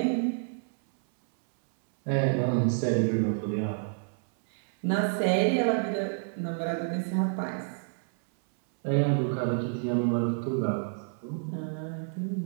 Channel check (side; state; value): left; silent; 59 dB below the other